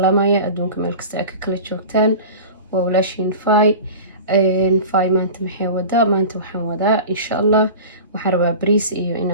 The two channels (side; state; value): both; inverted; correlation -0.35